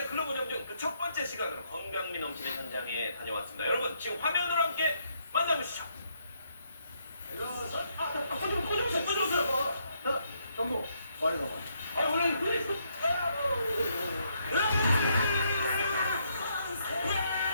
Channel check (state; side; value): inverted; both; correlation -0.74